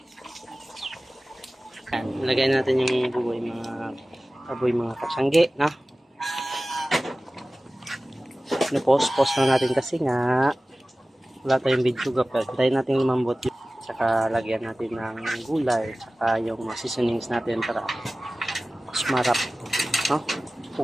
Yan, lagay natin yung baboy mga katsangge, no? Post na natin kasi nga wala tayong video gapel. Tayo natin lumambot yun. Saka lagyan natin ng gulay, saka yung seasonings natin para sumarap, no?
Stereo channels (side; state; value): both; normal; correlation 0.97